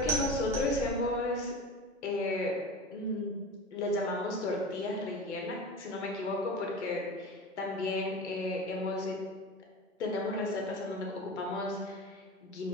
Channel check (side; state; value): both; normal; correlation 0.32